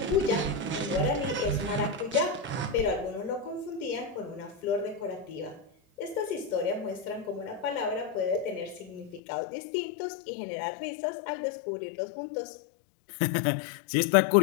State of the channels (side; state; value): right; drops out; at 9.2 s